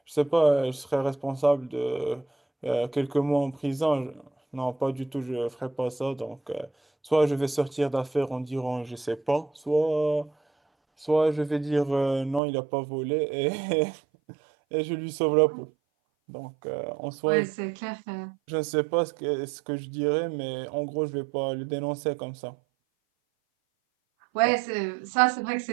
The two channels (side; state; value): left; drops out; at 12.4 s